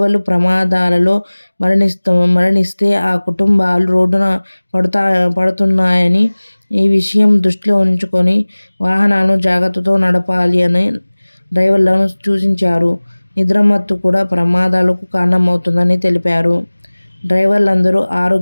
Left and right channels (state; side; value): inverted; both; correlation -1.00